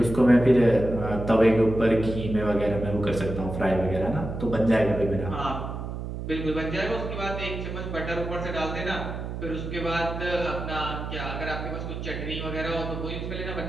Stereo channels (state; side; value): noise; right; hum, 6 dB below the sound